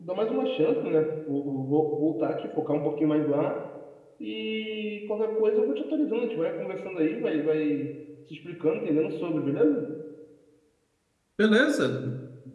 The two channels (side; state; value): both; identical; correlation 1.00